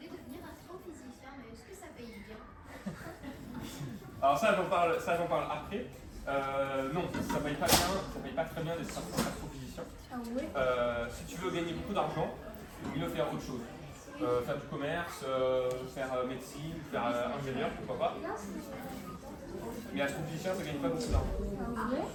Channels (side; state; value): both; identical; correlation 1.00